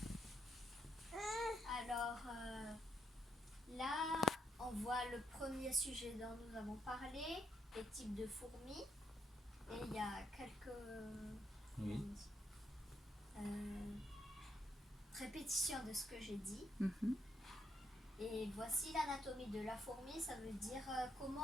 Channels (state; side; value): normal; both; correlation 0.76